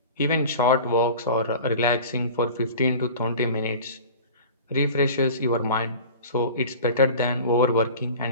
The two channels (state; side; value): inverted; both; correlation -0.38